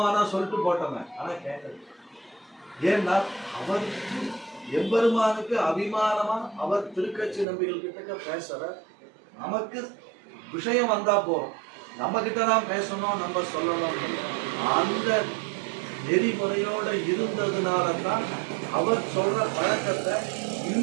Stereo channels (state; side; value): drops out; left; at 7.5 s